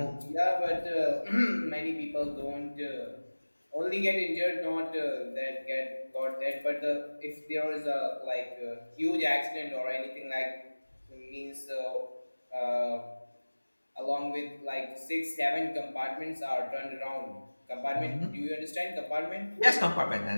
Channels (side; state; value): both; inverted; correlation -1.00